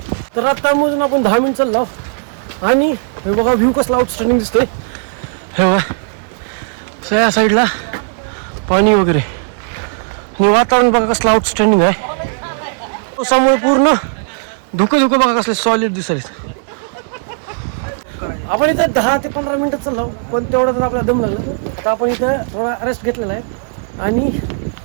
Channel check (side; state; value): left; silent; 63 dB below the other